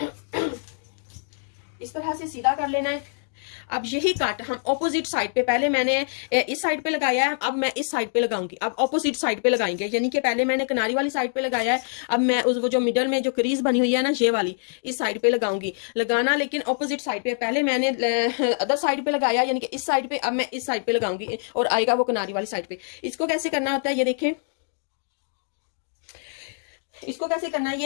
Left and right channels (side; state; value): right; silent; digital silence